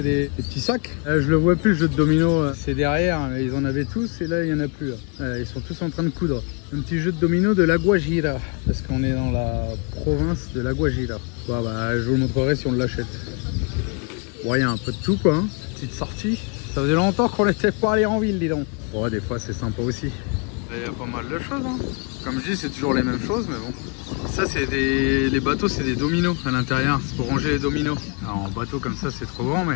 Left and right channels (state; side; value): quieter; right; 33.5 dB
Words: des petits sacs. Là, je le vois plus, le jeu de domino. C'est derrière. Ils en avaient tous et là, il n'y en a plus. Ils sont tous en train de coudre. Un petit jeu de domino de la Guajira. Parce qu'on est dans la province de la Guajira. Bon, bah, je vous montrerai si on l'achète. Ouais, il y a un peu de tout, quoi. Hein. Petite sortie. Ça faisait longtemps qu'on n'était pas allé en ville, dis donc. Bon, des fois, c'est sympa aussi. Il y a pas mal de choses, hein. Comme je dis, c'est toujours les mêmes choses, mais bon. Ça, c'est les bateaux, c'est des dominos à l'intérieur. C'est pour ranger les dominos. Alors, en bateau comme ça, c'est trop grand,